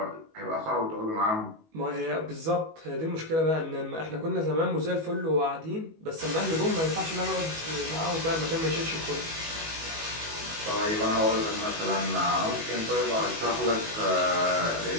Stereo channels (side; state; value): left; late; 19 ms